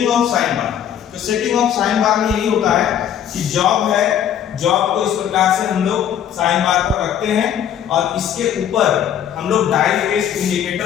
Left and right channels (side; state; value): right; quieter; 9.6 dB